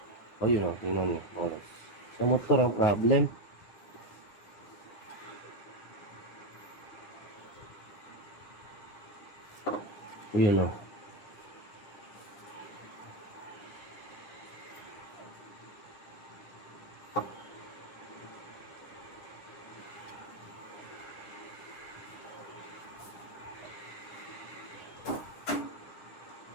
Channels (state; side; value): late; right; 9.9 ms